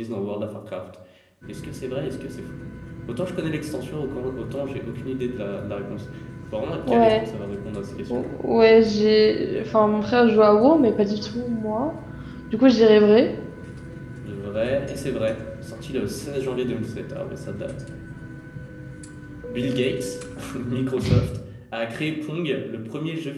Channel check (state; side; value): identical; both; correlation 1.00